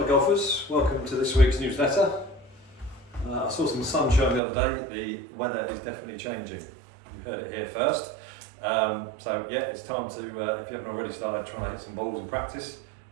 golfers, welcome to this week's newsletter. I saw some sunshine the other day. The weather is definitely changing. You heard it here first. So yeah, it's time to, if you haven't already started trying to hit some balls in practice.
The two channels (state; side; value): drops out; left; at 4.4 s